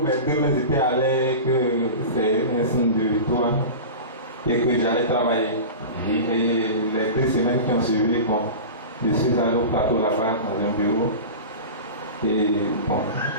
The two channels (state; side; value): inverted; both; correlation -0.30